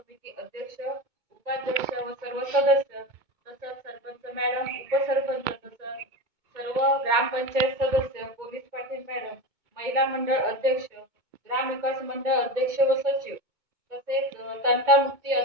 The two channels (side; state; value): left; late; 2.2 ms